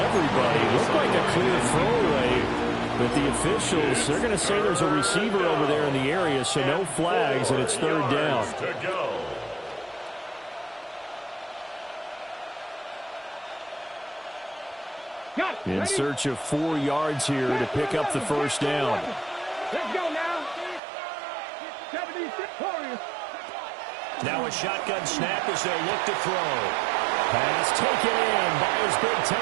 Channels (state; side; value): drops out; left; at 20.8 s